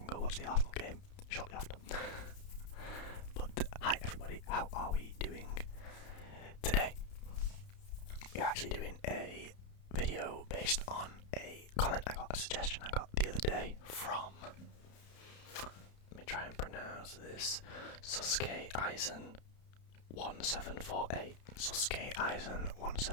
go watch the Arsenal game shortly after. But hi everybody, how are we doing today? We're actually doing a video based on a comment a suggestion I got the other day from, let me try and pronounce this, Suske Eisen 1748. Suske Eisen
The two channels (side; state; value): right; late; 31 ms